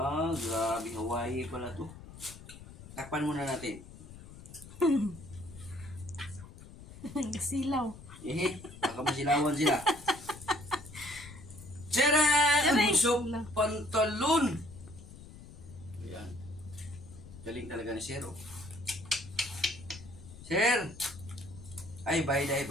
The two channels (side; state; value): left; noise; rumble, 16 dB below the sound